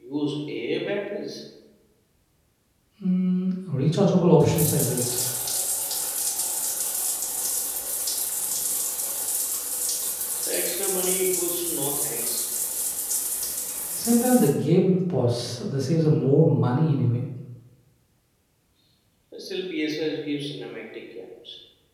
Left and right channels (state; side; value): identical; both; correlation 1.00